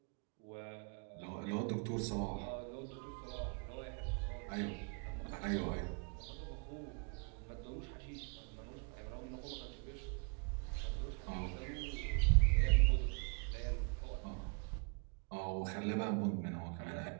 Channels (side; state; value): left; quieter; 35.8 dB